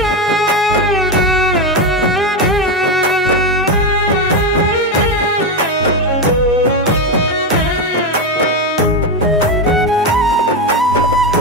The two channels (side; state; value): both; normal; correlation 0.11